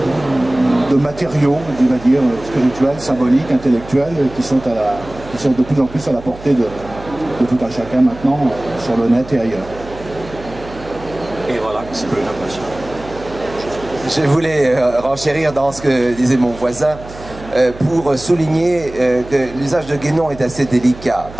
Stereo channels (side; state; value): right; noise; hum, 16 dB below the sound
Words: de matériaux, on va dire, spirituels, symboliques, intellectuels, qui sont de plus en plus à la portée de tout un chacun maintenant sur le net et ailleurs. Et voilà, c'est plus une impression. Je voulais renchérir dans ce que disait mon voisin pour souligner que l'usage de Guénon est assez délicat